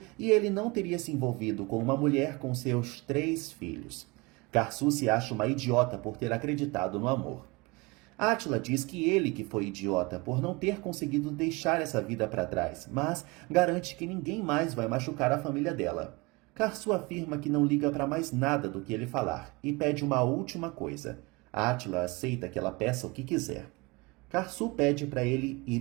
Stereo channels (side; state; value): left; quieter; 25.5 dB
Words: e ele não teria se envolvido com uma mulher com seus 3 filhos. Karsu se acha uma idiota por ter acreditado no amor. Átila diz que ele que foi idiota por não ter conseguido deixar essa vida para trás, mas garante que ninguém mais vai machucar a família dela. Karsu afirma que não liga para mais nada do que ele falar e pede uma última coisa. Átila aceita que ela peça o que quiser. Karsu pede para ele ir